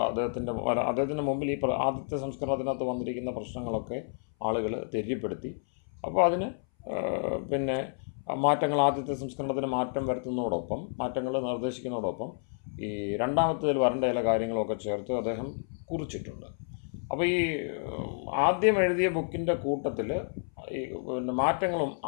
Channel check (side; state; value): right; silent; 58 dB below the other